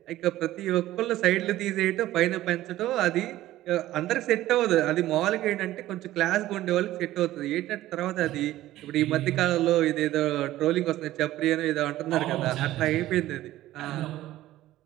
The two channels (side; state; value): left; quieter; 15.0 dB